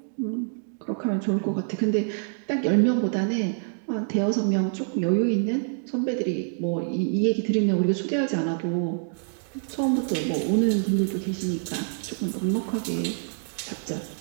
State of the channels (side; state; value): left; silent; digital silence